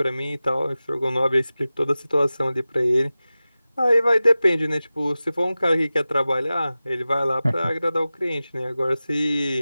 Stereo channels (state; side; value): inverted; both; correlation -0.96